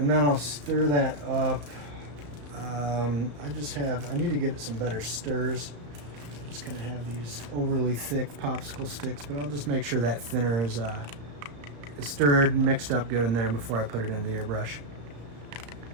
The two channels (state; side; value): late; left; 34 ms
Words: then I'll stir that up. I need to get some better stirs. Just gonna have these overly thick popsicle sticks, but I'll just make sure that thinner is stirred and mixed up good in there before I put it in the airbrush.